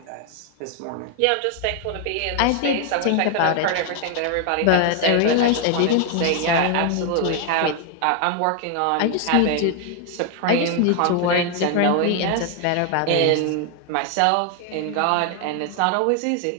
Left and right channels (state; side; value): different; both; correlation 0.01